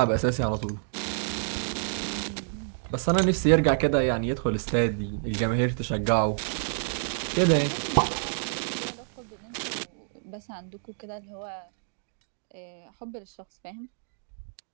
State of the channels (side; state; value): left; silent; digital silence